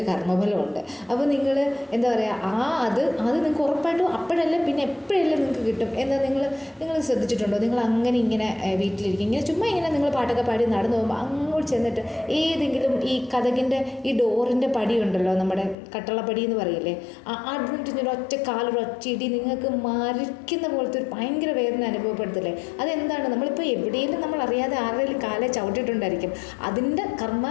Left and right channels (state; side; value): drops out; right; at 15.8 s